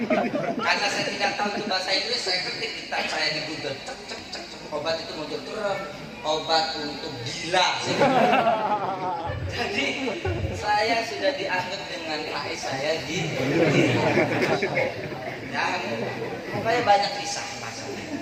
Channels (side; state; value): both; identical; correlation 1.00